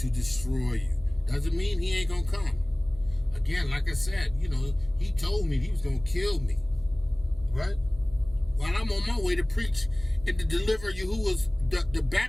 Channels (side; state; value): right; noise; hum, 19 dB below the sound